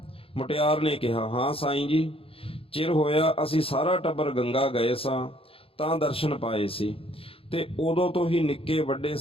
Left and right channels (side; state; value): right; late; 0.27 ms